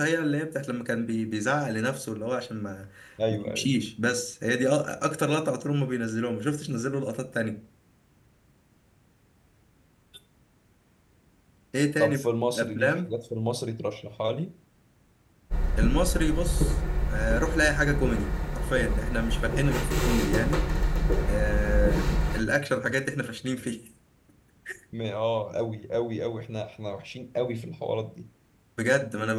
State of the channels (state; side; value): identical; both; correlation 1.00